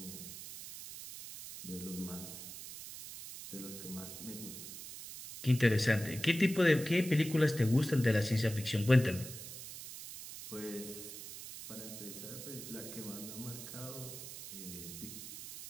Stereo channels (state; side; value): noise; right; hiss, 11 dB below the sound